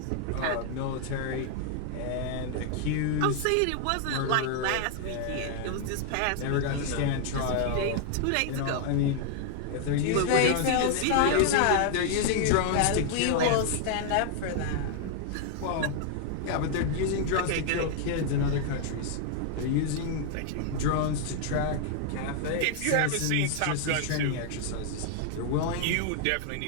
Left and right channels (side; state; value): both; different; correlation 0.00